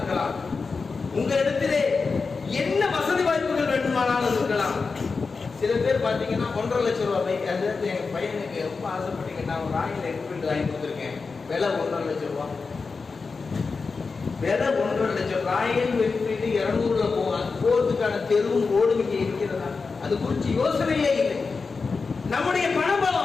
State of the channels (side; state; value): right; quieter; 4.6 dB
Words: உங்களிடத்திலே என்ன வசதி வாய்ப்புகள் வேண்டுமானாலும் இருக்கலாம். சில பேர் பாத்தீங்கன்னா 1.5 லட்சம் ரூபாய் பைக். அந்த இடத்துல எங்க பையனுக்கு ரொம்ப ஆசைப்பட்டீங்கன்னா ஒரு ராயல் என்ஃபீல்டு வாங்கி கொடுத்துருக்கேன். விலை 1.5 லட்சம் ரூபாய். விலை 1.5 லட்சம். ராயல் என்ஃபீல்டு 200ல போகும். அது போறதுக்கான தெருவும் ரோடும் இங்கே இருக்கிறதா? அது குறித்து யோசனையே இல்லை. நம்முடைய